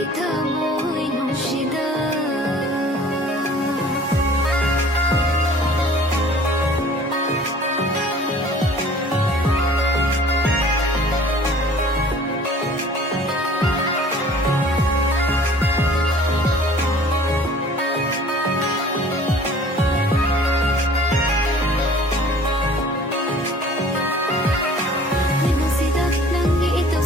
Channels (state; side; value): normal; both; correlation 0.50